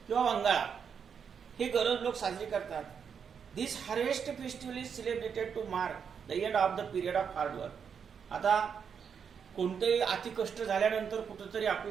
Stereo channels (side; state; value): left; quieter; 7.0 dB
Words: किंवा वंगाळा. हे गरोज लोक साजरे करतात. This harvest festival is celebrated to mark the end of the period of hard work. आता कोणतेही अतिकष्ट झाल्यानंतर कुठंतरी